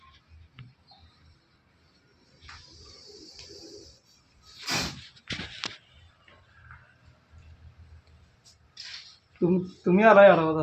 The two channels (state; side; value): identical; both; correlation 1.00